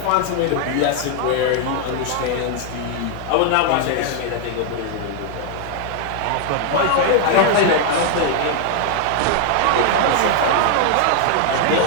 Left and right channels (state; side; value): different; both; correlation 0.00